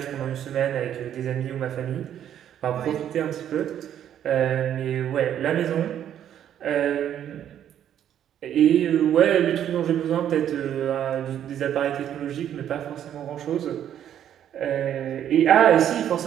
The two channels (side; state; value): left; quieter; 10.2 dB